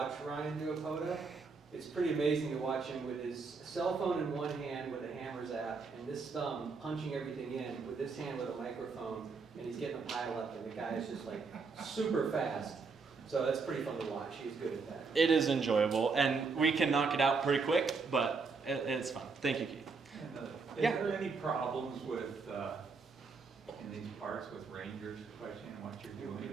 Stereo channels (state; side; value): quieter; left; 4.6 dB